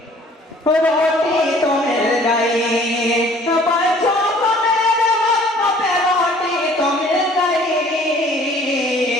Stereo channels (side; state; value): both; normal; correlation 0.54